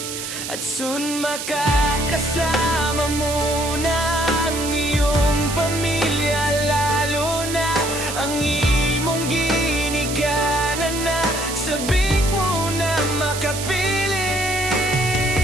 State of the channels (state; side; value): noise; right; hiss, 7 dB below the sound